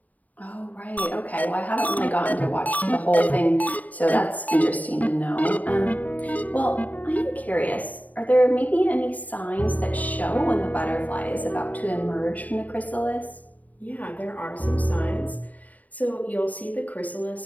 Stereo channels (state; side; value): late; right; 0.075 ms